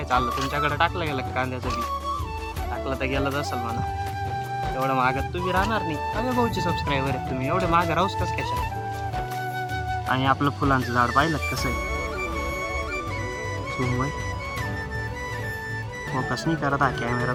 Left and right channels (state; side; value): identical; both; correlation 1.00